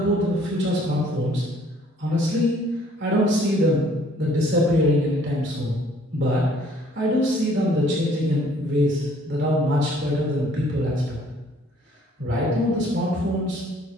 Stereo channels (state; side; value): normal; both; correlation 0.59